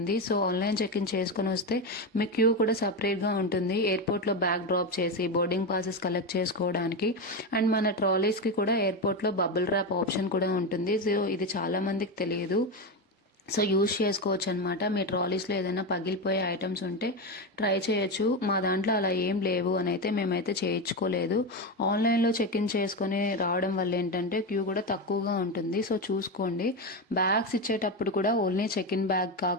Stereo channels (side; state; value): both; normal; correlation 0.14